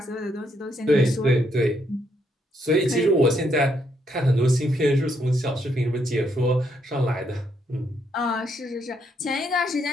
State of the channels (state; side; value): normal; both; correlation 0.75